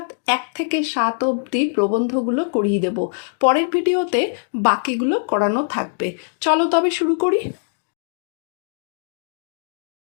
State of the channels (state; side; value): silent; right; digital silence